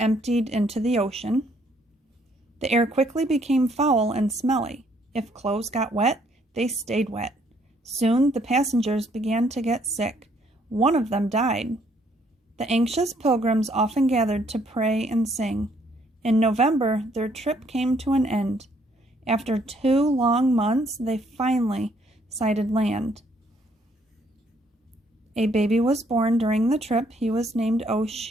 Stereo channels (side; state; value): both; normal; correlation 0.67